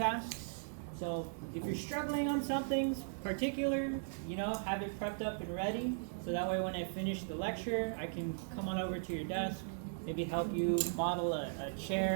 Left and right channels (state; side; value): silent; left; digital silence